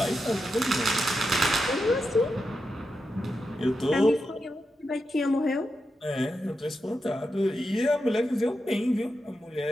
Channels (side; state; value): both; normal; correlation 0.88